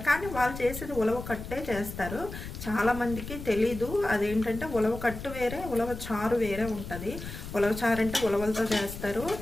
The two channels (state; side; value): noise; left; rumble, 10 dB below the sound